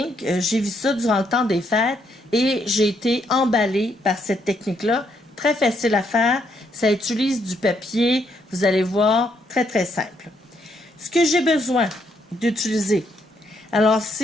J'ai vu ça durant le temps des fêtes et j'ai été emballée par cette technique-là. Très facile à faire. Ça utilise du papier, vous allez voir, très très simple. Ce que j'ai besoin d'utiliser, alors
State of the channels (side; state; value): both; normal; correlation 0.74